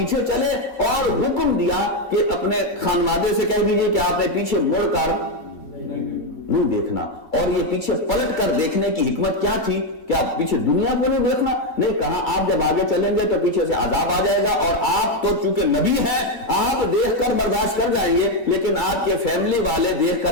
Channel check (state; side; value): late; right; 2.3 ms